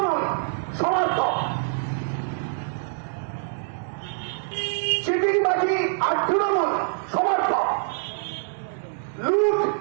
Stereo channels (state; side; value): silent; left; digital silence